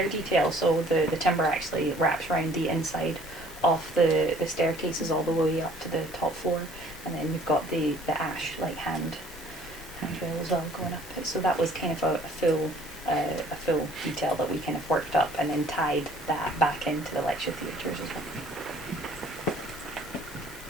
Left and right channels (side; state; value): both; normal; correlation 0.56